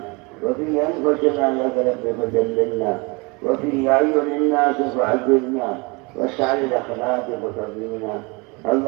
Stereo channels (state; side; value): quieter; left; 28.2 dB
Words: وفي أنفسنا لك رب فدللنا وفي أعين الناس فعذبنا واسعى الأخلاق فترضينا